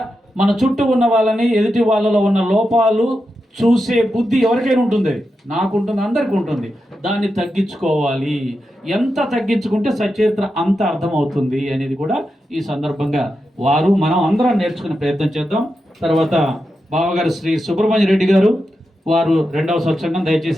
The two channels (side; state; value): both; normal; correlation 0.88